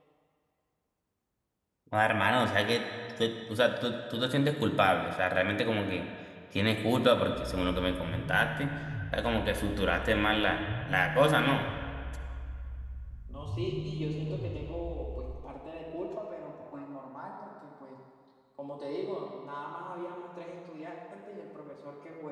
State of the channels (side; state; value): both; identical; correlation 1.00